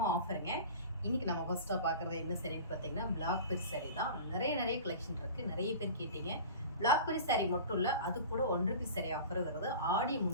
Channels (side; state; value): both; inverted; correlation -0.37